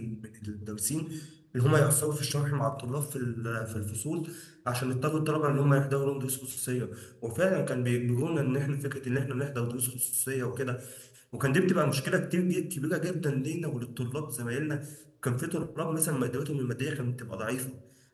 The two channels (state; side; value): identical; both; correlation 1.00